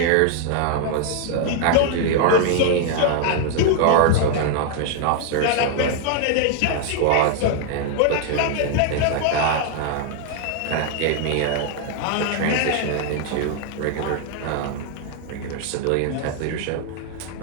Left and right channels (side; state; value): both; different; correlation 0.00